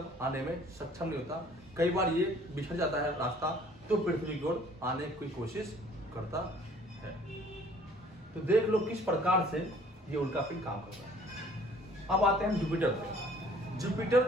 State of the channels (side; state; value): both; normal; correlation 0.55